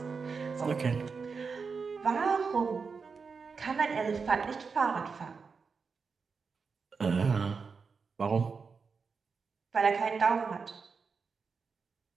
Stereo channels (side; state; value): left; quieter; 5.2 dB